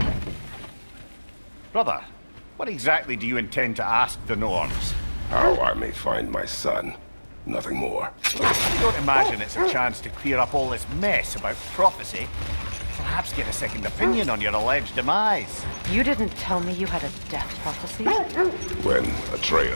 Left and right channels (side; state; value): both; inverted; correlation -1.00